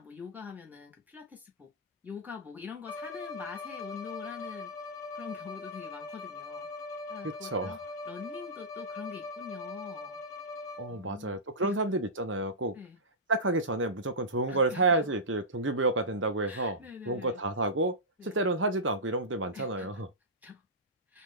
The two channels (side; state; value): both; normal; correlation -0.15